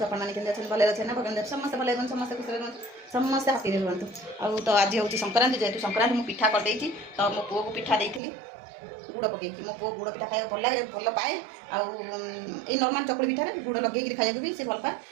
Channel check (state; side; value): drops out; left; at 8.2 s